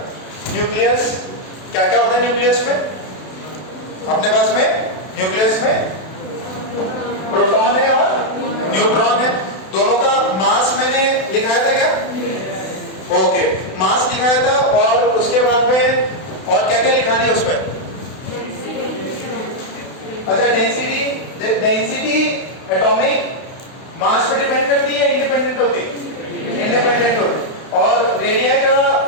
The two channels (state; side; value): late; right; 32 ms